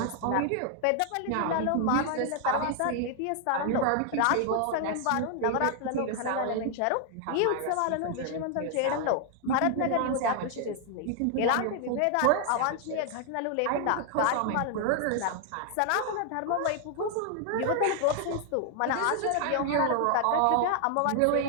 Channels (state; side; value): different; both; correlation 0.00